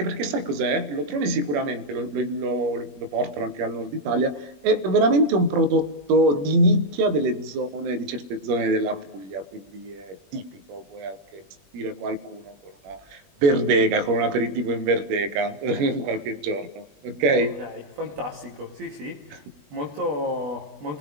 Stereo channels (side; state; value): left; late; 20 ms